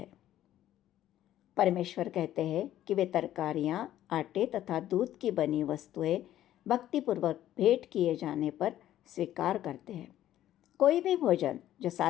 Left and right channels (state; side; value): quieter; right; 12.7 dB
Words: परमेश्वर कहते हैं कि वे तरकारियाँ, आटे तथा दूध की बनी वस्तुएं भक्तिपूर्वक भेंट किए जाने पर स्वीकार करते हैं। कोई भी भोजन जो